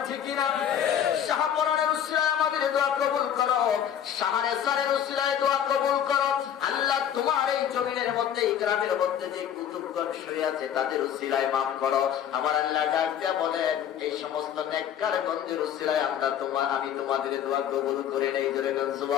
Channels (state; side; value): quieter; right; 9.5 dB